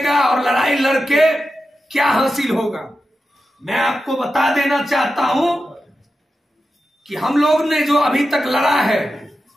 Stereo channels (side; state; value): both; normal; correlation 0.91